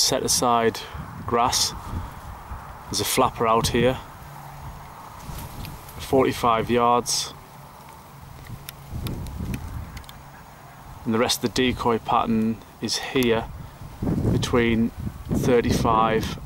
aside grass. There's a flapper out here, 45 yards, and the rest of the decoy pattern is here between 35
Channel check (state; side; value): identical; both; correlation 1.00